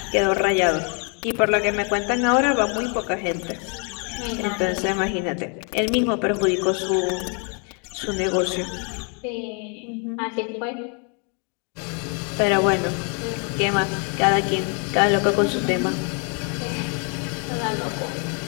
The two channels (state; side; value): quieter; right; 37.6 dB